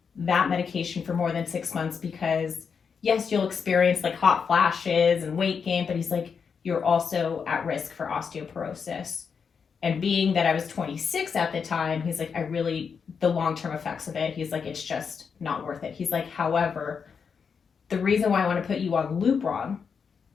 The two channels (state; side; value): quieter; right; 6.2 dB